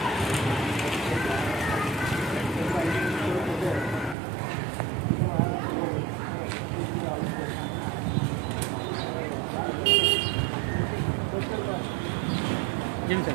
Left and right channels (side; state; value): left; drops out; at 4.2 s